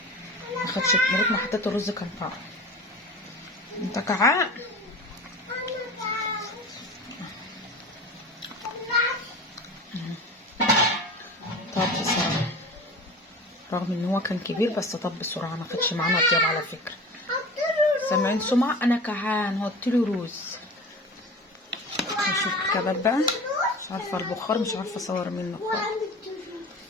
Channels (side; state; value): both; normal; correlation 0.36